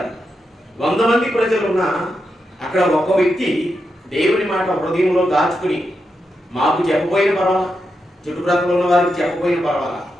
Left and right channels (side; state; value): both; normal; correlation 0.86